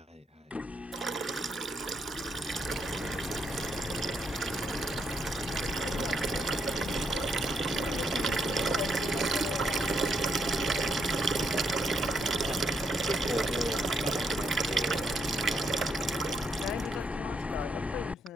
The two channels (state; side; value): normal; both; correlation 0.76